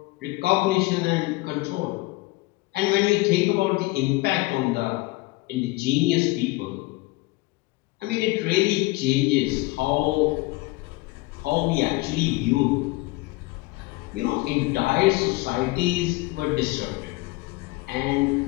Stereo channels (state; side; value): quieter; right; 21.9 dB